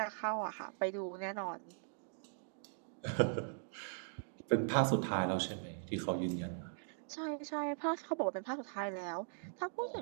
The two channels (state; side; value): silent; left; digital silence